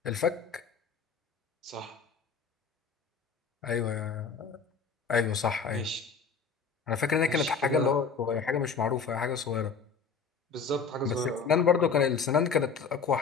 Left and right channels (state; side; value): quieter; right; 5.5 dB